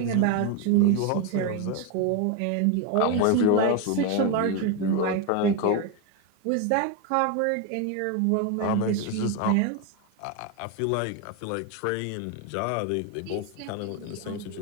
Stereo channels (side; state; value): both; different; correlation 0.02